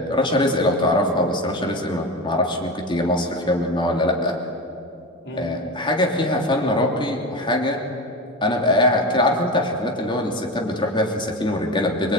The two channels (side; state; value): both; normal; correlation 0.24